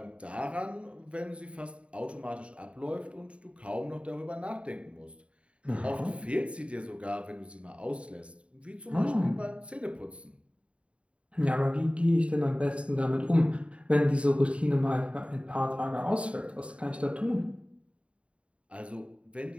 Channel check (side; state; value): left; late; 0.062 ms